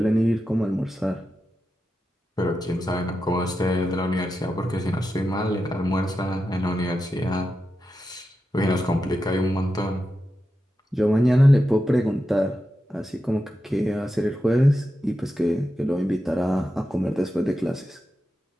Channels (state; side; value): normal; both; correlation 0.89